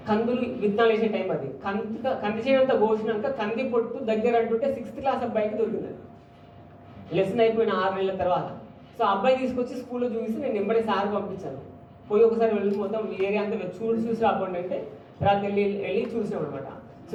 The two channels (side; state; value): both; identical; correlation 1.00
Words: కందులు విత్తనాలు వేసే టైం అది. కంది చేయడంతా కోసినాక కంది పొట్టు దగ్గర అంటుంటే 6th క్లాస్ అబ్బాయికి దొరికింది. లెసన్ అయిపోయిన 6 నెలల తర్వాత. సో అబ్బాయి తీసుకొచ్చి స్కూల్లో చూసి నేను వెంబడే సార్ పంపించాను. పోయి ఒకసారి వెళ్ళి మొత్తం ఏరియా అంతా చూసి రాకుండా అంటే తర్వాత వెళ్ళి చూసాం అనమాట. సో